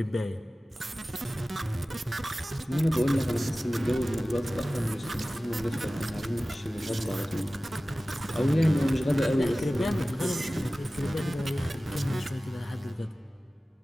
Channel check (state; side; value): normal; both; correlation 0.97